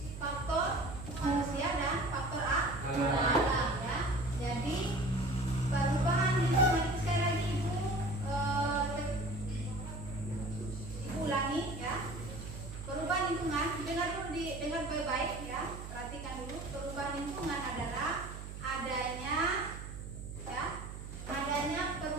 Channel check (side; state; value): right; noise; hum, 9 dB below the sound